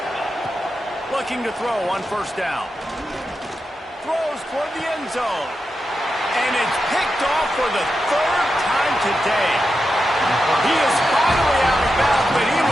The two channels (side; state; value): both; normal; correlation 0.89